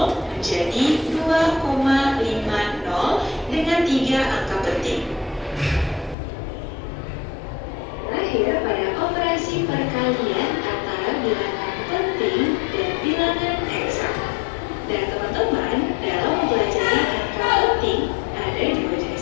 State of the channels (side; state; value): right; drops out; at 6.2 s